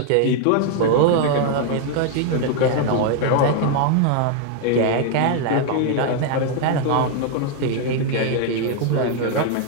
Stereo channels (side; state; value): both; different; correlation 0.00